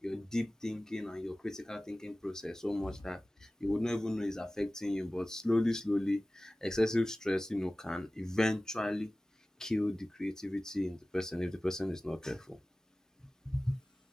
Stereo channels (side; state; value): both; normal; correlation 0.97